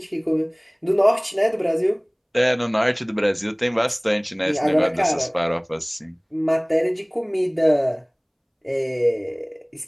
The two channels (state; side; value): identical; both; correlation 1.00